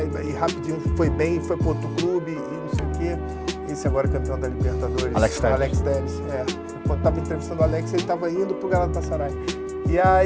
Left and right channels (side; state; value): both; identical; correlation 1.00